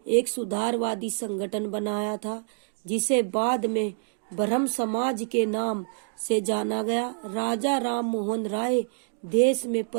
एक सुधारवादी संगठन बनाया था, जिसे बाद में ब्रह्म समाज के नाम से जाना गया। राजा राम मोहन राय देश में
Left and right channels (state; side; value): silent; left; digital silence